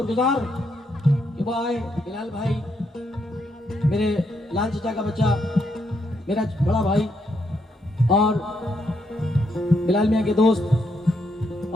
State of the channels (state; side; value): normal; both; correlation 0.77